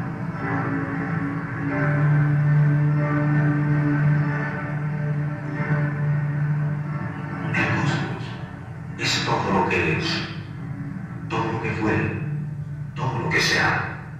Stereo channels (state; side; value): identical; both; correlation 1.00